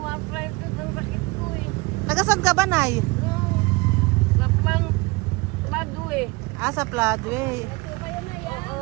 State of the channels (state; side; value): quieter; left; 24.6 dB